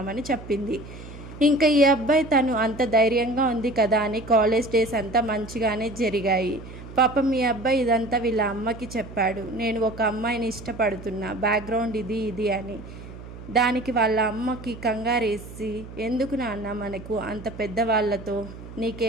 చెప్పింది. ఇంకా ఈ అబ్బాయి తను అంత ధైర్యంగా ఉంది కదా అని కాలేజ్ డేస్ అంతా మంచిగానే జరిగాయి. పాపం ఈ అబ్బాయి ఇదంతా వీళ్ళ అమ్మకి చెప్పాడు, నేను ఒక అమ్మాయిని ఇష్టపడుతున్నా, బ్యాక్గ్రౌండ్ ఇది ఇది అని. దానికి వాళ్ళ అమ్మకి కంగారేసి, ఎందుకు నాన్న మనకు అంత పెద్దవాళ్ళతో,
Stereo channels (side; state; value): right; noise; hum, 14 dB below the sound